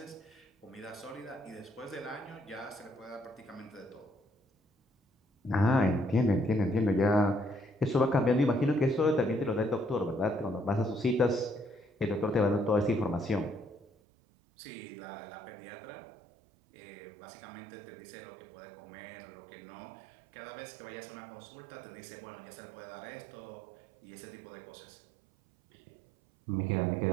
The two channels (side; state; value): left; drops out; at 13.9 s